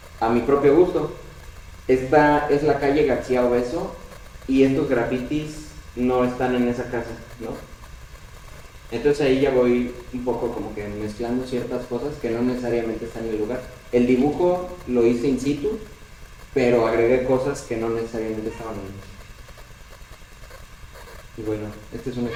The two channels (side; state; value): both; identical; correlation 1.00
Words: a mi propio gusto. Esta es la calle García Obeso y estos grafitis no están en esa casa, ¿no? Entonces ahí ya voy un poco como que mezclando ciertas cosas que no necesariamente están en el lugar. El dibujo lo hice in situ, pero agregué cosas que no necesariamente estaban ahí. Y bueno, este es un